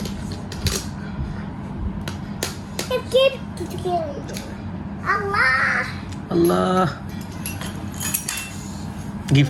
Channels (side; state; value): both; identical; correlation 1.00